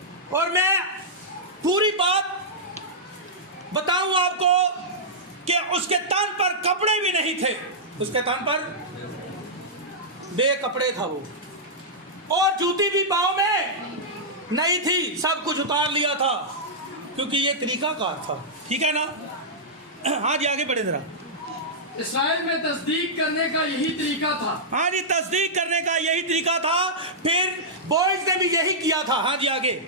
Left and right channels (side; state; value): both; normal; correlation -0.11